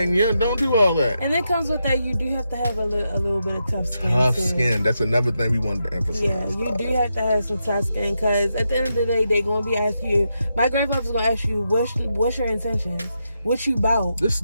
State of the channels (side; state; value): both; inverted; correlation -0.85